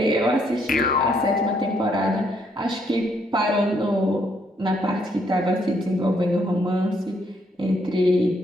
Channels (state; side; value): normal; both; correlation 0.71